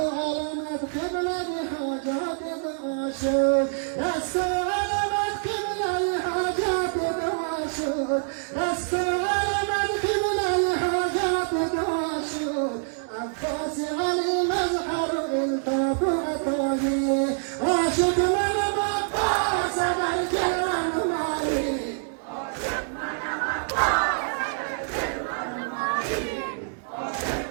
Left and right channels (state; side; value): silent; left; digital silence